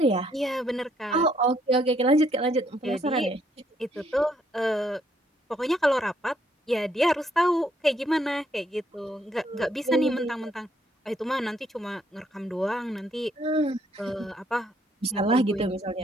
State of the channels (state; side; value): normal; both; correlation 0.70